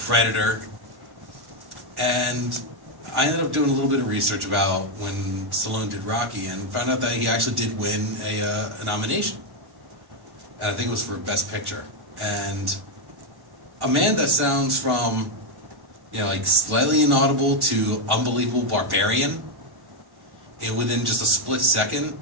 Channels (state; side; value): late; left; 1.4 ms